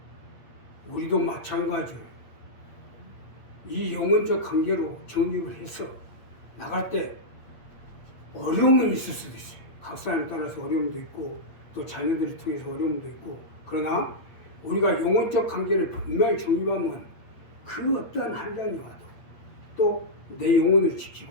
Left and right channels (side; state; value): right; late; 8.6 ms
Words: 우리도 마찬가지예요. 이 영혼적 관계로 정립을 해서 나갈 때 어려움은 있을 수도 있어요. 각 사람에 따라서 어려움도 있고 또 자녀들을 통해서 어려움도 있고 그러나 우리가 영혼적 관계를 분명히 정립하면 그 어떠한 한량이 와도 또 내 영혼을